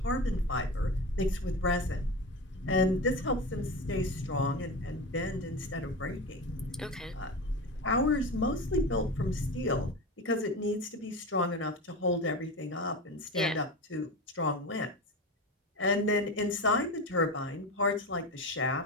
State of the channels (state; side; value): normal; both; correlation 0.24